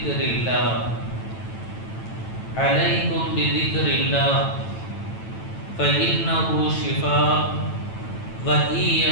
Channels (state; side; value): late; right; 9.0 ms